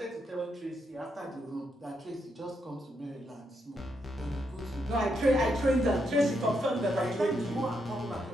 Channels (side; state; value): both; normal; correlation 0.79